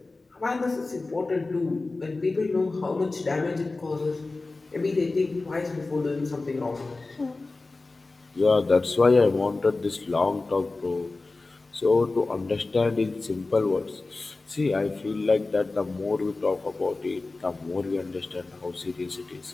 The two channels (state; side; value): quieter; right; 3.4 dB